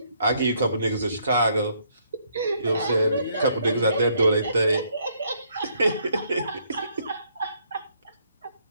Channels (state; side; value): inverted; both; correlation -0.70